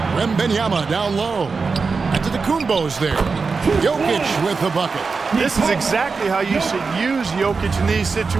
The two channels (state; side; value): quieter; left; 4.7 dB